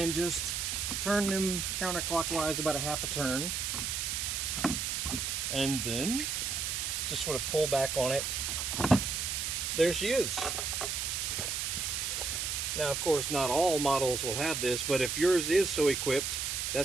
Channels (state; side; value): noise; right; hiss, 1 dB below the sound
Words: just turn them counterclockwise about a half a turn, and then just sort of pull back on it. There she is. Now, of course, not all models will have this, but if yours is so equipped,